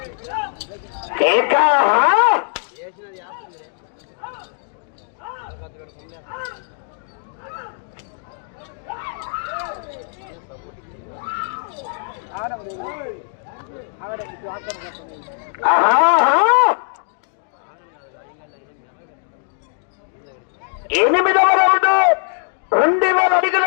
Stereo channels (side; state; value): right; silent; digital silence